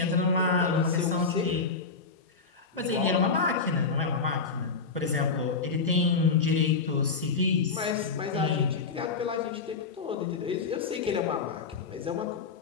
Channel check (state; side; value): quieter; right; 4.7 dB